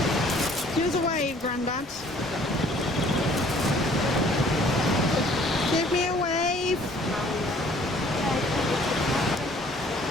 Give us a wave, Grandad. Give me a wave.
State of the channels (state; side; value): normal; both; correlation 0.57